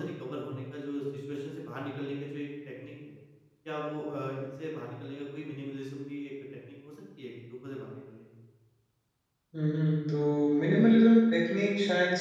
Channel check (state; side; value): identical; both; correlation 1.00